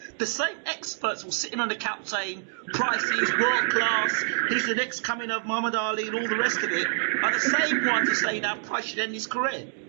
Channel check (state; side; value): silent; left; digital silence